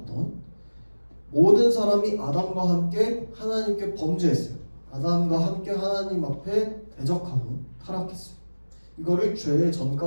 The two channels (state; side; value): inverted; both; correlation -1.00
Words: 모든 사람이 아담과 함께 하나님께 범죄했어요. 아담과 함께 하나님 앞에 대적하고 타락했어요. 이거를 죄의